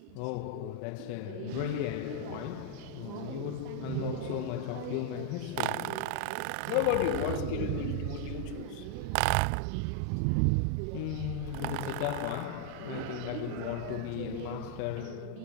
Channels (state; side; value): different; both; correlation 0.00